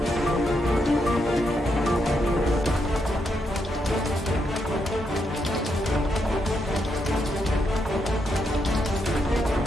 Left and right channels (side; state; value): both; normal; correlation 0.80